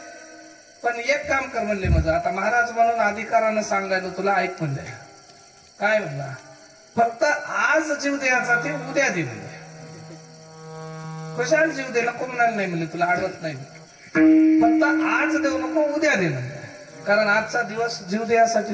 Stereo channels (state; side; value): identical; both; correlation 1.00